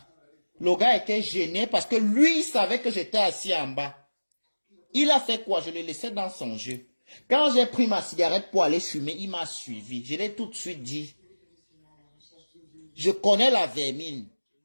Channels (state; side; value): inverted; both; correlation -1.00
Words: Le gars était gêné parce que lui, il savait que j'étais assis en bas. Il a fait quoi? Je le laissais dans son jeu. Quand j'ai pris ma cigarette pour aller fumer, il m'a suivi. Je l'ai tout de suite dit. Je connais la vermine.